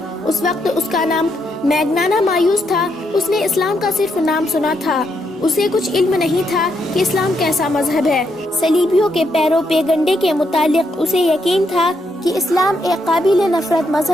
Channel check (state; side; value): normal; both; correlation 0.78